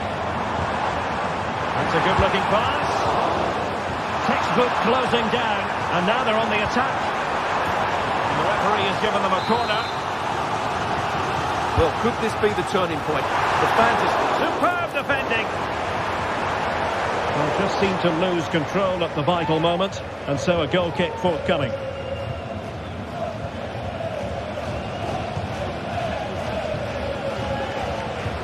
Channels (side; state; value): both; identical; correlation 1.00